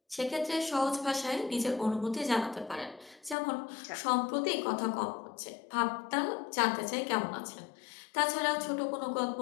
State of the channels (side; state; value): right; drops out; at 3.4 s